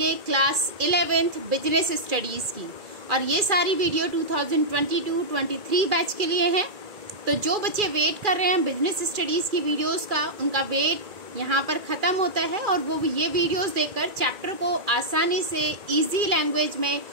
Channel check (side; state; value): left; late; 2.4 ms